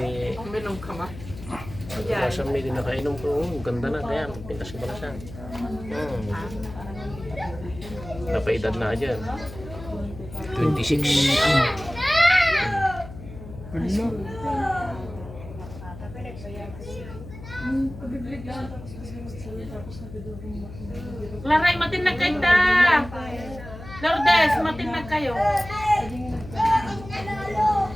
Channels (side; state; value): left; noise; hum, 13 dB below the sound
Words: Minong ka ba? Pagkakasang may din nakainom ko, ganda na kaya pintas ko pala siya. Napaedad na dyan. 26. Ano? Laray, matinag kayo ta! Lourdes, matinag kayo.